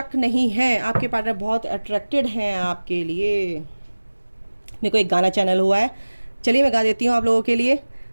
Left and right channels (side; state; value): both; inverted; correlation -1.00